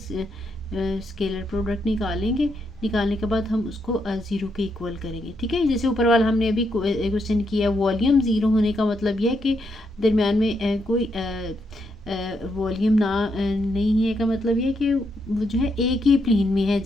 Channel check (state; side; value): normal; both; correlation 0.79